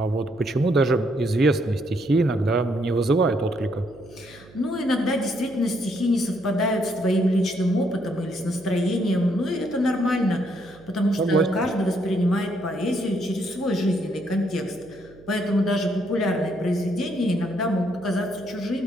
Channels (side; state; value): right; noise; hum, 23 dB below the sound